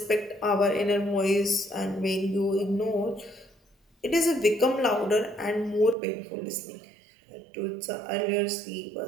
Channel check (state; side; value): drops out; left; at 6.0 s